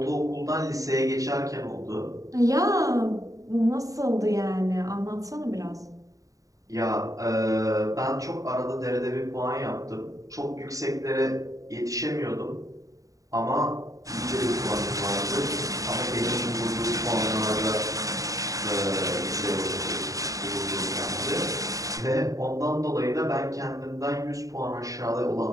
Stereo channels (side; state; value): left; late; 0.16 ms